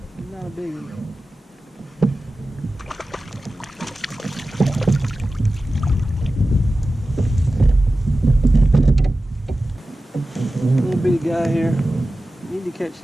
Not a big one. Little bitty guy here. Need to catch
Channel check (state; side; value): normal; both; correlation 0.95